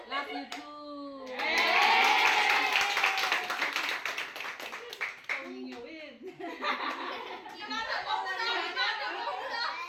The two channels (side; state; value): both; identical; correlation 1.00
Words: love you too